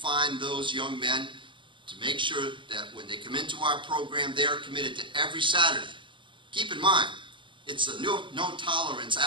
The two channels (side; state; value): left; late; 0.24 ms